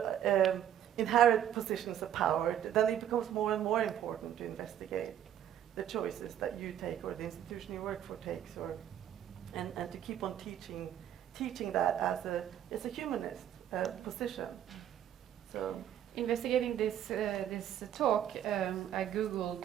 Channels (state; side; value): quieter; left; 10.5 dB